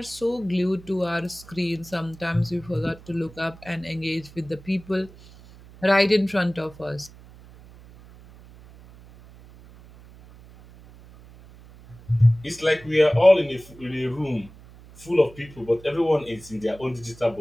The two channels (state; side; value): noise; right; hum, 21 dB below the sound